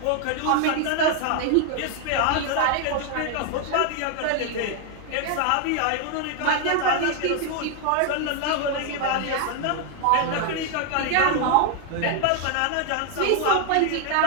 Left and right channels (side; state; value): both; different; correlation 0.00